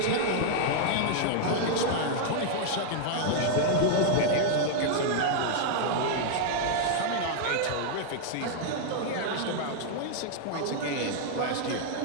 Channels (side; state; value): both; different; correlation -0.01